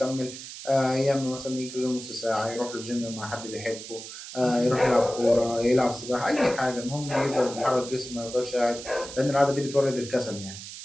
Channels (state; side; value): noise; right; hiss, 12 dB below the sound